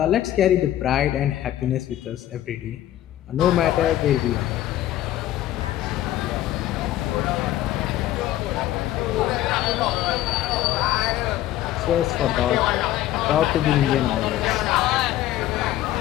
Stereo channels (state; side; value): quieter; right; 13.6 dB